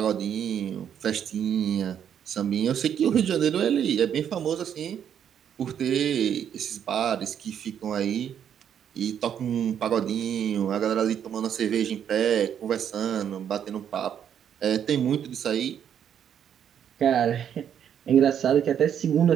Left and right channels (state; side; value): quieter; left; 8.9 dB